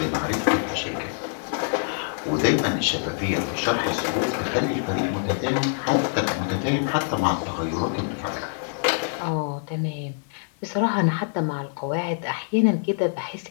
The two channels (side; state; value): right; silent; digital silence